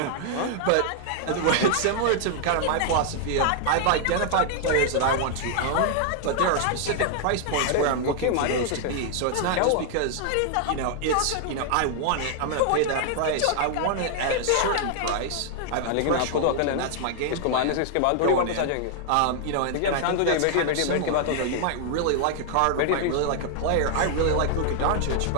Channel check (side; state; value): both; different; correlation 0.00